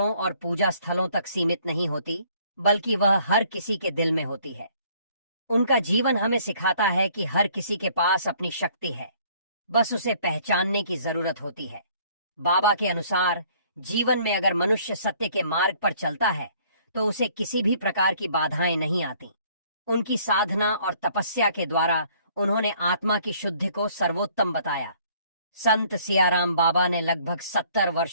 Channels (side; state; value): both; inverted; correlation -0.60